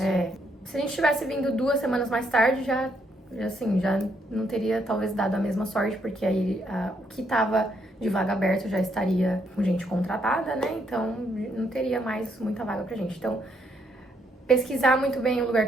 Se a gente tivesse vindo 2 semanas mais tarde, já não teria talvez dado a mesma sorte, porque aí o que estava de vaga aberta já estaria com gente contratada, né? Então não teria mais muita vaga pra gente. Então, pesquisar muito bem o lugar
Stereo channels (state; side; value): normal; both; correlation 0.73